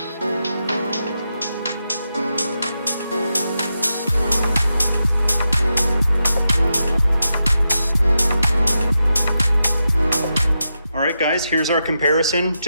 Alright guys, here's our comparison.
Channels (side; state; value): both; inverted; correlation -0.87